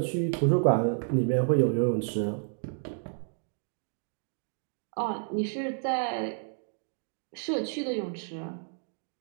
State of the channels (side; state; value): left; silent; 57 dB below the other